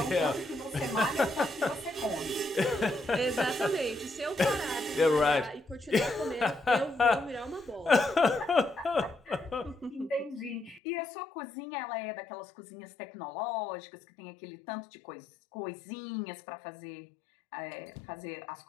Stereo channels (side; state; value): right; drops out; at 10.8 s